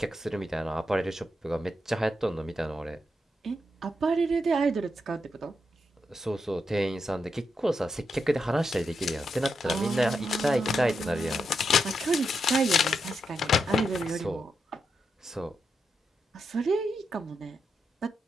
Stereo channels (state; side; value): normal; both; correlation 0.84